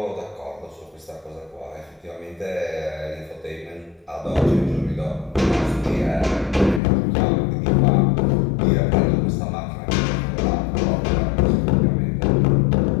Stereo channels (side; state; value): right; drops out; at 6.8 s